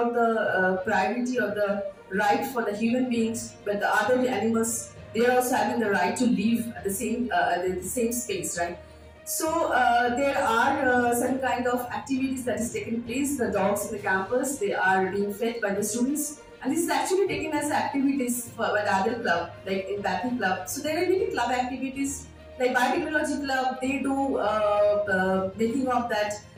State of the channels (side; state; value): both; identical; correlation 1.00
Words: the priority or the right for the human beings, but the other animals, they are also having the right to live at the same space, right? So there are some kind of activities that is taking place. The dogs in the campus, they are being fed by the students, and this is actually taken as activities by the other club, like empathy club. So there are many club activities, like biotechnology club. They do making of that